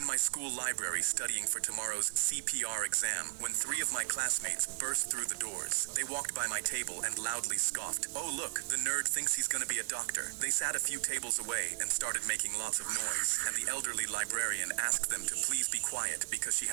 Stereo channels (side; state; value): left; silent; 54 dB below the other